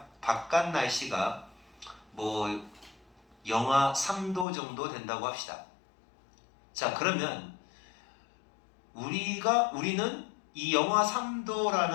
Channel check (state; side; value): drops out; right; at 4.5 s